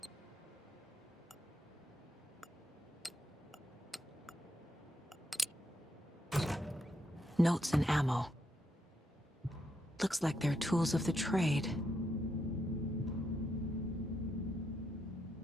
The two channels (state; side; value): normal; both; correlation 0.80